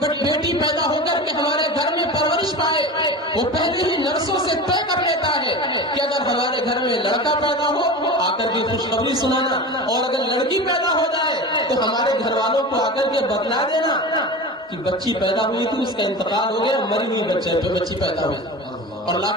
بیٹی پیدا ہو کر کے ہمارے گھر میں پرورش پائے. وہ پہلے ہی نرسوں سے طے کر لیتا ہے کہ اگر ہمارے گھر میں لڑکا پیدا ہو آ کر کے خوشخبری سنانا، اور اگر لڑکی پیدا ہو جائے تو ہمارے گھر والوں کو آ کر کے بتلا دینا کہ بچی پیدا ہوئی تھی، اس کا انتقال ہو گیا، مری ہوئی بچی پیدا ہوئی، اور لا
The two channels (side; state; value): both; normal; correlation 0.31